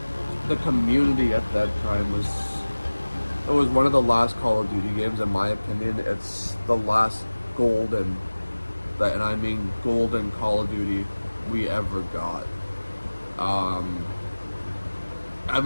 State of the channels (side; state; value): both; inverted; correlation -1.00